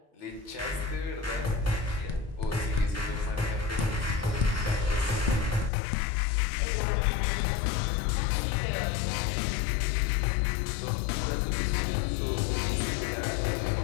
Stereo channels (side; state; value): right; drops out; at 5.7 s